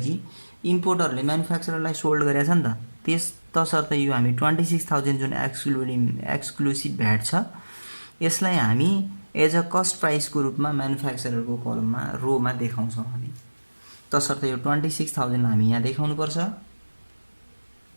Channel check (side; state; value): both; inverted; correlation -1.00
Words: इम्पोर्टरले म्यानुफ्याक्चररलाई सोल्ड गरेछ नि त। तसर्थ यो हामी 26,000 जुन एक्सक्लुसिभ भ्याट छ यसलाई हामी एज अ कस्ट प्राइसको रूपमा म्यानुफ्याक्चररको कलममा रोमा देखाउँछौँ हामी। तसर्थ यो 26,000 हामी यहाँ देखाउनुपर्छ।